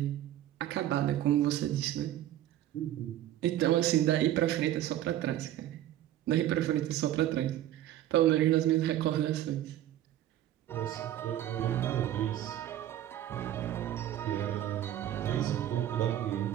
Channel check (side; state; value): left; quieter; 12.6 dB